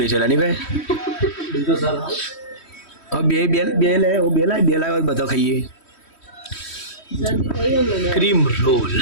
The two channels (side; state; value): right; late; 3.1 ms